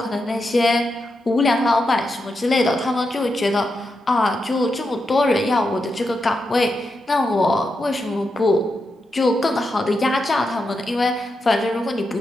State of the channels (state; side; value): normal; both; correlation 0.86